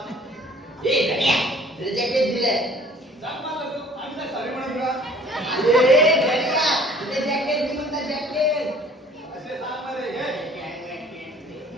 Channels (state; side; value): normal; both; correlation 0.52